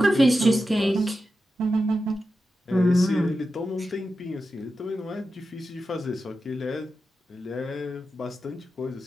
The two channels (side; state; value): both; normal; correlation 0.91